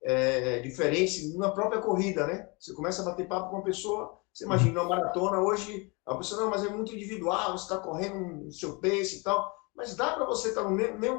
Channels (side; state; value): right; quieter; 29.0 dB